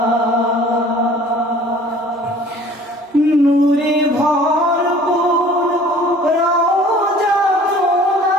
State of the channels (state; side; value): normal; both; correlation 0.50